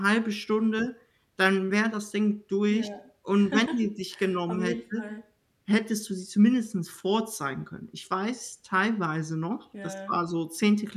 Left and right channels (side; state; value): both; identical; correlation 1.00